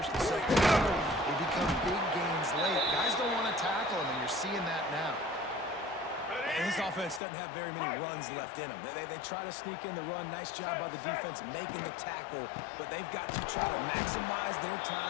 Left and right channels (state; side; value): drops out; right; at 7.2 s